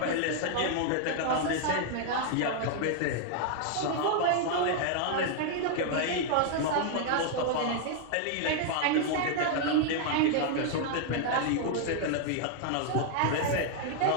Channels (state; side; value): different; both; correlation 0.00